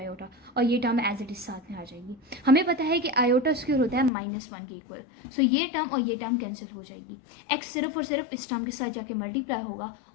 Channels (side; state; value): right; drops out; at 4.1 s